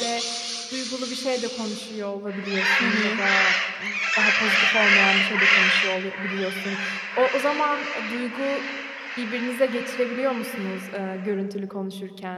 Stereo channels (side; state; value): both; identical; correlation 1.00